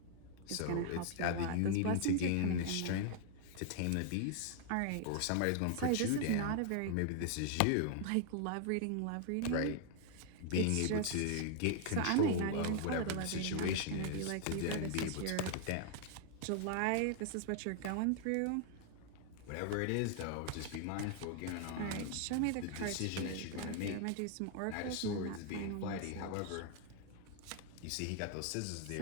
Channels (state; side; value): different; both; correlation 0.00